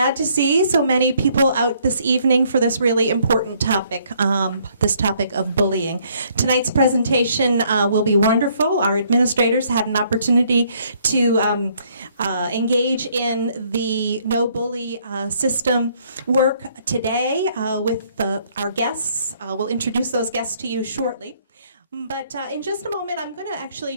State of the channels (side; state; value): both; inverted; correlation -0.66